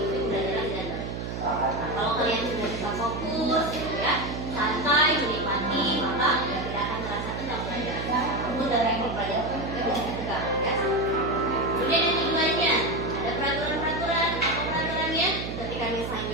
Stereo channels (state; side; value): noise; right; hum, 5 dB below the sound